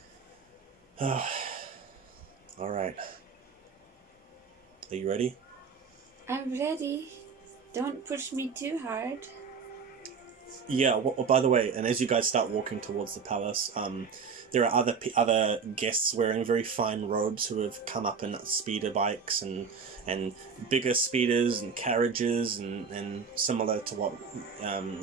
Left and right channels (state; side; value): quieter; left; 5.8 dB